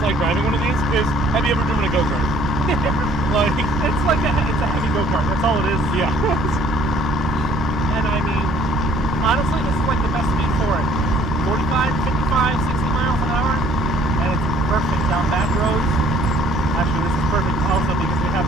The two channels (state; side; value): normal; both; correlation 0.58